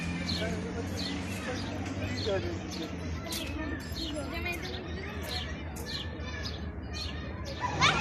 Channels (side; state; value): both; identical; correlation 1.00